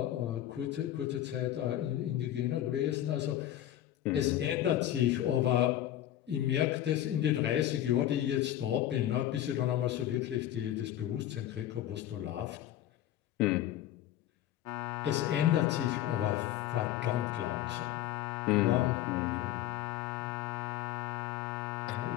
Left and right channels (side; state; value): right; quieter; 12.6 dB